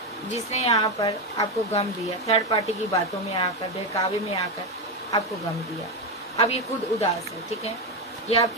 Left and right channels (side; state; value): both; normal; correlation 0.10